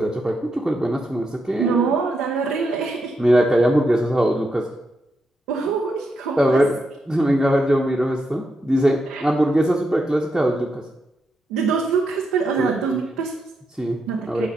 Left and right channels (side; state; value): both; normal; correlation 0.83